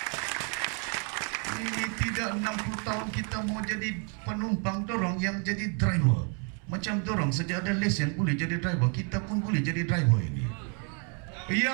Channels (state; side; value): quieter; left; 38.7 dB